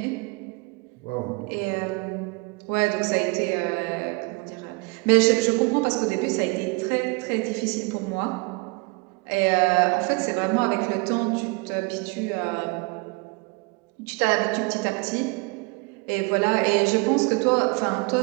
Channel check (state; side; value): quieter; left; 27.9 dB